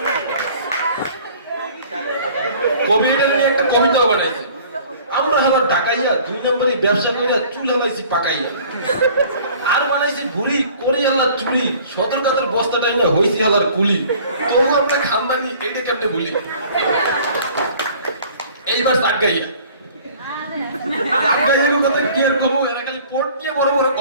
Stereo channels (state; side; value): inverted; both; correlation -0.50